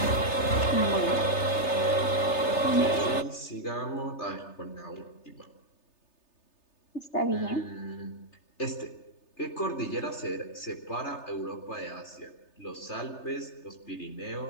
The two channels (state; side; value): late; right; 3.3 ms